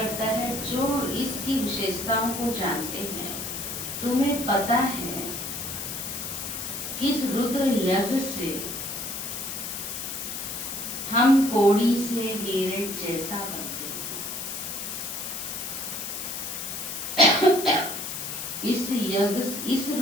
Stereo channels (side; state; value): left; noise; hiss, 5 dB below the sound